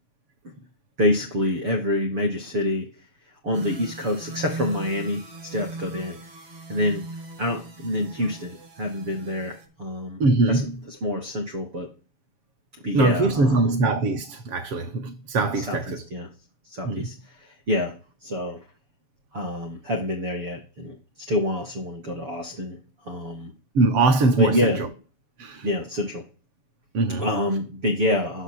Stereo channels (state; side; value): late; left; 7.0 ms